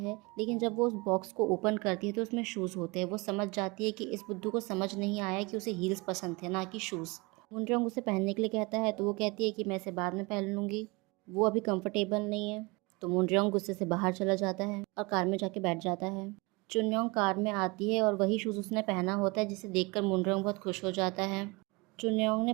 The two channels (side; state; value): left; quieter; 26.3 dB